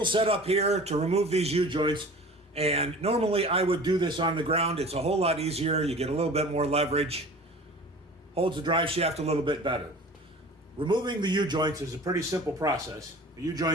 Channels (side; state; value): both; normal; correlation 0.41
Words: set up here to remove these U-joints, and normally I would do this on the ground. It's a whole lot easier. You get a little bit more leverage, holds the drive shaft a little bit better. Removing the U-joints is a pretty simple process. The